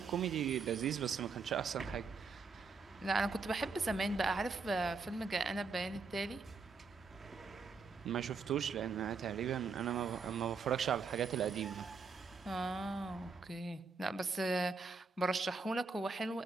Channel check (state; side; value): quieter; left; 4.6 dB